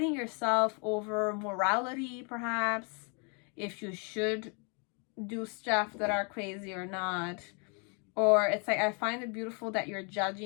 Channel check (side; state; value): right; quieter; 36.1 dB